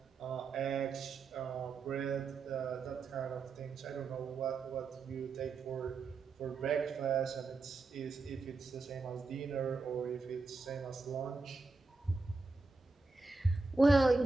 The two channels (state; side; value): quieter; left; 3.8 dB